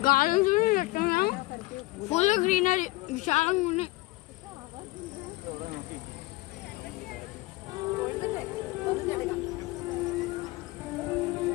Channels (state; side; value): quieter; right; 20.7 dB